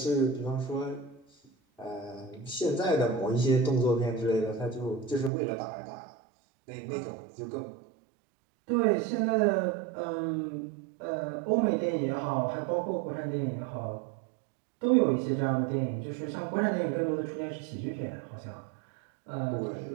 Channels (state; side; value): drops out; left; at 5.3 s